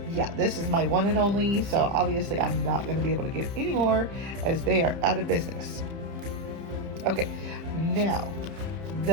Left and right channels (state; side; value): late; left; 30 ms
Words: yeah, this is my one and only. So obviously I'm not going to be able to get any more, as they are out of business. Okay, now